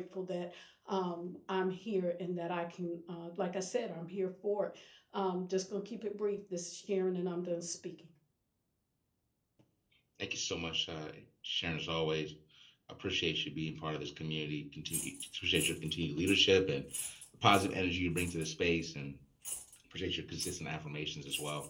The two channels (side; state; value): both; identical; correlation 1.00